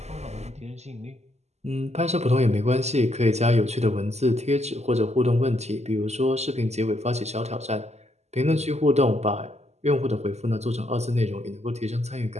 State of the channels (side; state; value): left; late; 0.32 ms